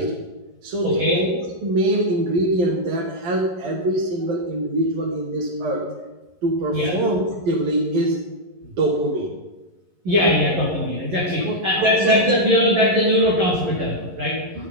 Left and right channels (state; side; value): late; left; 11 ms